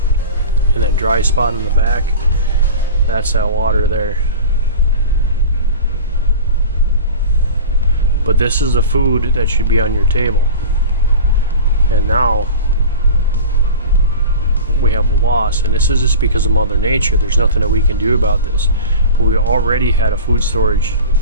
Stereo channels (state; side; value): inverted; both; correlation -0.34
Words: And that dry spot in the back, that's that water there. But this is the food that should be on your table. And now we have a loss, and this is just because of Mother Nature. There's nothing that we can do about this. But we already had a food storage